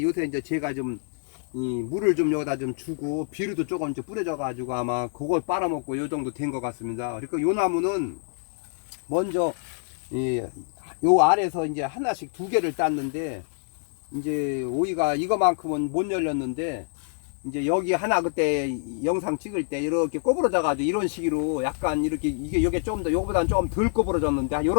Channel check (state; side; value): silent; right; digital silence